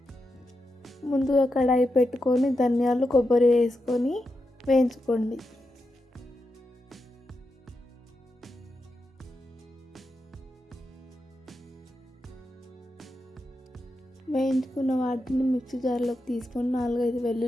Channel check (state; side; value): normal; both; correlation 0.87